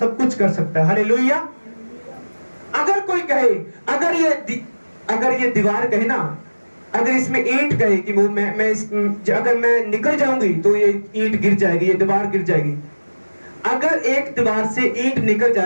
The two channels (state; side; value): inverted; both; correlation -1.00